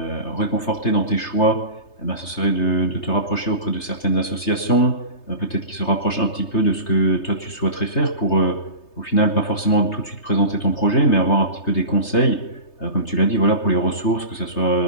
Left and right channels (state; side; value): late; right; 3.3 ms